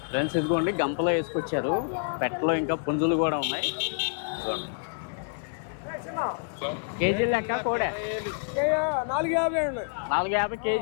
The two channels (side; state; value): right; silent; 59 dB below the other